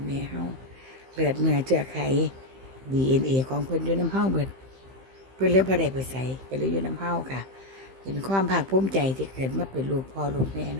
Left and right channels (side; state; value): left; late; 15 ms